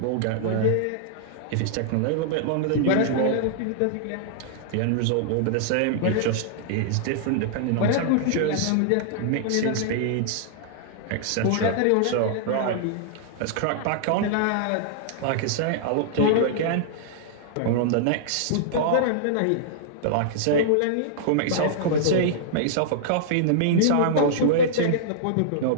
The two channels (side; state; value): both; different; correlation -0.01